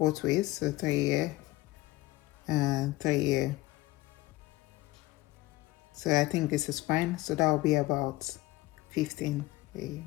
ways, so 3 here and 3 here. So I think this is fine. So that will be about 15.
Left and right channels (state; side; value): quieter; right; 18.8 dB